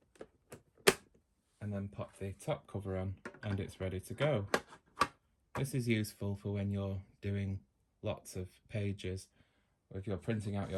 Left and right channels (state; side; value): identical; both; correlation 1.00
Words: and then pop the top cover on, and it's ready to go. This is useful for when you're doing lots of pages, or if you're printing out